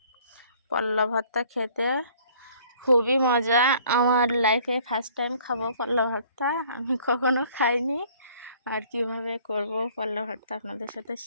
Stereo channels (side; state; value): both; inverted; correlation -0.56